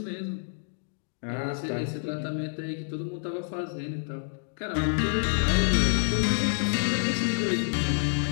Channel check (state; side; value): silent; right; digital silence